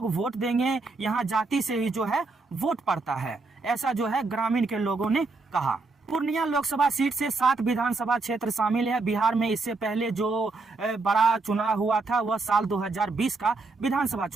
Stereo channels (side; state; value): left; quieter; 3.7 dB